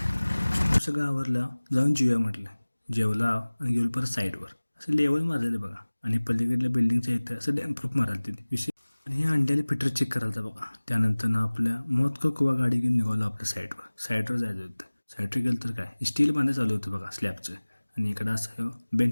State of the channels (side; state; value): both; inverted; correlation -1.00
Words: सगळं आवरलं, जाऊन जेवूया म्हटलं. जेवला आणि गेलो परत साईडवर. असं लेवल मारलेलं बघा, आणि पलीकडल्या बिल्डिंगच्या इथं असं डॅम प्रूफ मारायला तिथे विषय. आणि हे अंड्याला फिटर चेक करायला बघा. त्यानंतर ना आपल्या मौत का कुवा गाडी घेऊन निघालो आपल्या साईडवर जायचं होतं. साईडवर गेलं तर काय, स्टील बांधायला चालू होतं बघा स्लॅबचं. आणि इकडं असं